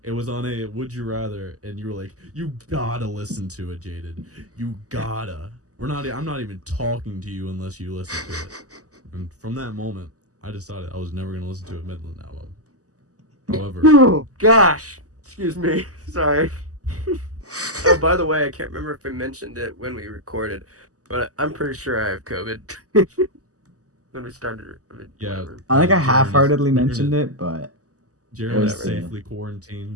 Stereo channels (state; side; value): late; left; 0.66 ms